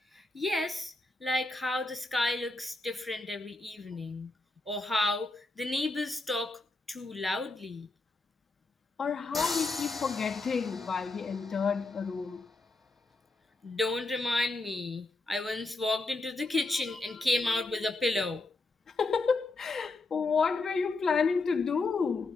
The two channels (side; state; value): right; quieter; 3.3 dB